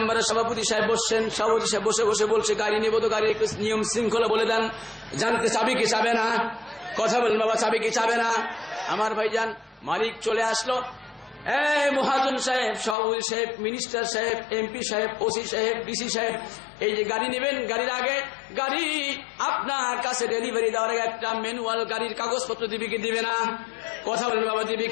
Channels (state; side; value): drops out; right; at 13.0 s